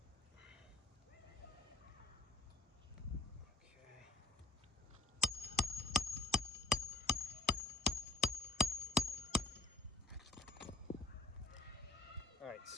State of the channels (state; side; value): quieter; right; 3.5 dB